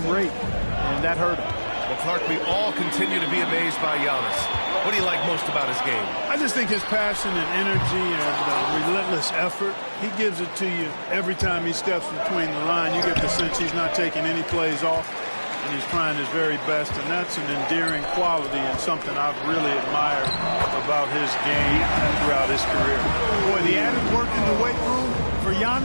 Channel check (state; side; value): inverted; both; correlation -1.00